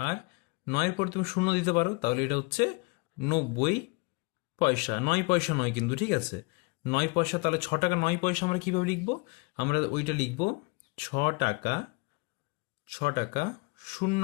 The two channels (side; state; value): right; quieter; 28.0 dB